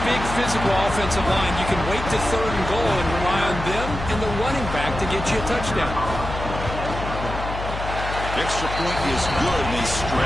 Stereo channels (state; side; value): noise; left; hum, 7 dB below the sound